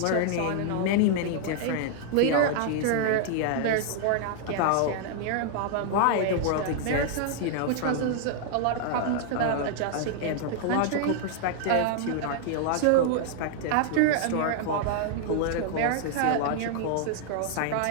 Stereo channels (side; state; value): both; different; correlation -0.01